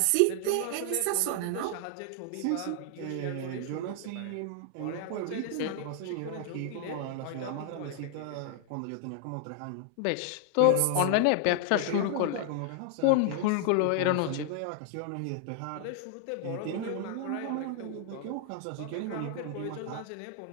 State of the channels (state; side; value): different; both; correlation 0.00